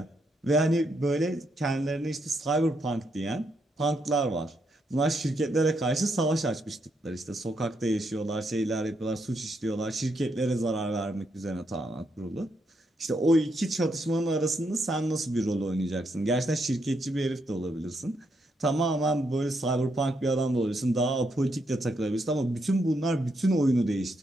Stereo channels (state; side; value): normal; both; correlation 0.78